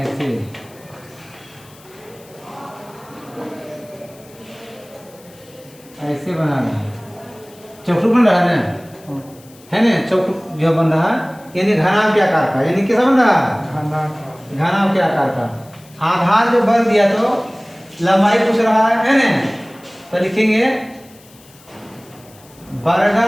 ऐसे बना रहा है। चौखुट बन रहा है ना चौखुट जो बन रहा है यानी घनाभ के आकार का। यानी कैसा बन रहा है? घनाभ के आकार का। आधार जो बल दिया तो लंबाई पूछ रहा है ना तो लिखेंगे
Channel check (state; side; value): noise; left; hiss, 25 dB below the sound